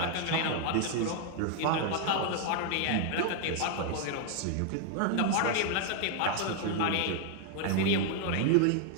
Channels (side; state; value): both; different; correlation 0.00